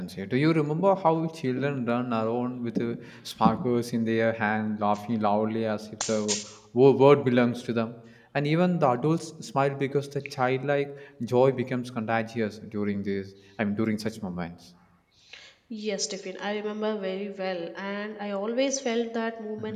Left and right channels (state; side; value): identical; both; correlation 1.00